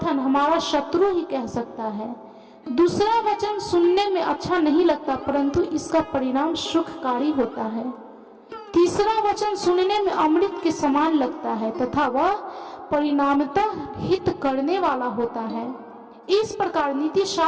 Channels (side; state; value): both; identical; correlation 1.00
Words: हमारा शत्रु ही कह सकता है। दूसरा वचन सुनने में अच्छा नहीं लगता, परंतु इसका परिणाम सुखकारी होता है। तीसरा वचन सुनने में अमृत के समान लगता है तथा वह परिणामतः हित करने वाला होता है। इस प्रकार नीति